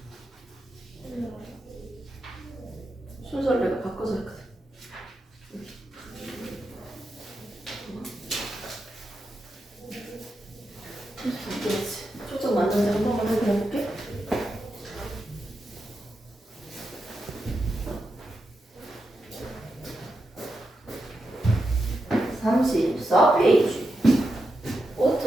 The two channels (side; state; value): both; normal; correlation 0.87